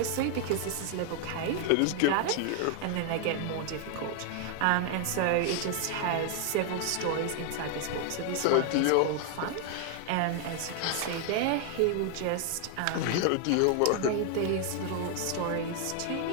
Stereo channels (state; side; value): different; both; correlation 0.00